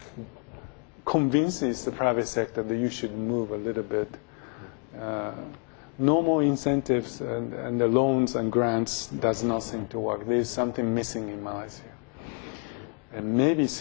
convinces the private sector that you should move a little bit. Normal incentives and the loans and grants does not seem to work. There is something missing in Malaysia. And maybe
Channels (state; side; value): quieter; right; 36.1 dB